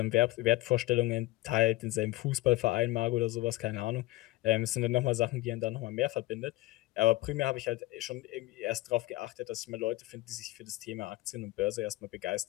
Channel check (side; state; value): right; quieter; 19.1 dB